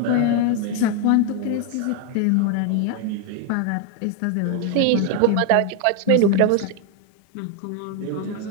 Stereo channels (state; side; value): different; both; correlation 0.01